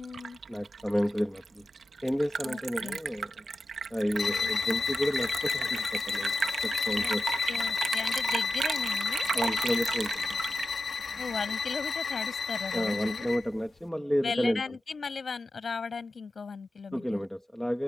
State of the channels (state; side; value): normal; both; correlation 0.91